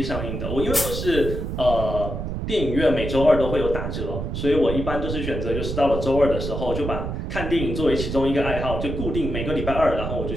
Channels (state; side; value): noise; right; rumble, 4 dB below the sound